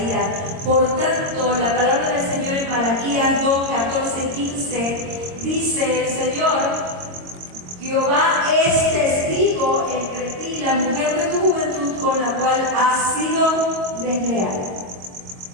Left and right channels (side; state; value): left; late; 22 ms